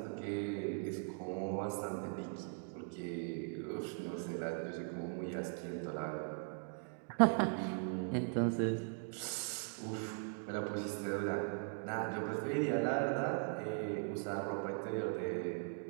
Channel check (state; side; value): silent; left; 51 dB below the other